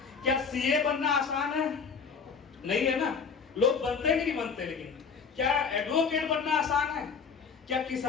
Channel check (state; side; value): quieter; right; 5.8 dB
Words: क्या सीए बनना आसान है? नहीं है ना, लोग बनते कि नहीं बनते। लेकिन क्या एडवोकेट बनना आसान है? क्या